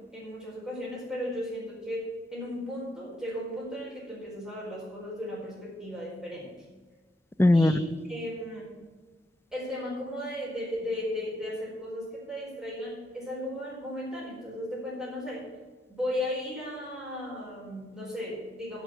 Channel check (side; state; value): both; normal; correlation 0.77